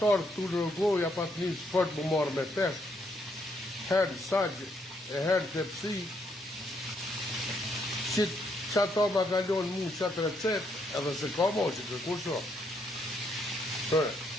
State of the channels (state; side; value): normal; both; correlation 0.74